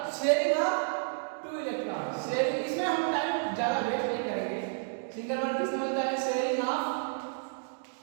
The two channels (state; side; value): silent; left; 57 dB below the other